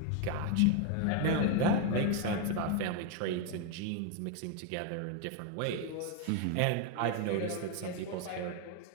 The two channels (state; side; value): different; both; correlation 0.01